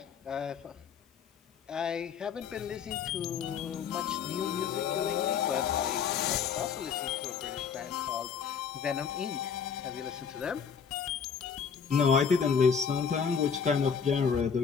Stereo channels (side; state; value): right; quieter; 6.7 dB